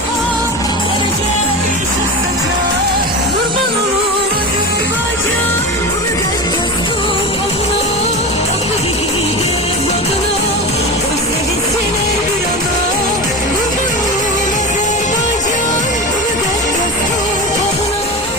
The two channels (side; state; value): both; normal; correlation 0.25